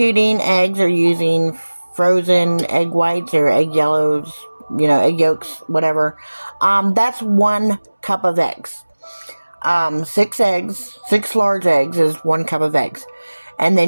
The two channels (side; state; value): both; inverted; correlation -1.00